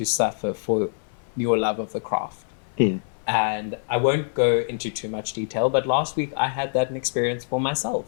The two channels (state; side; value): silent; right; 57 dB below the other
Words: suffer for your love of the craft. And I won't go into too much detail, but last week I had that experience for myself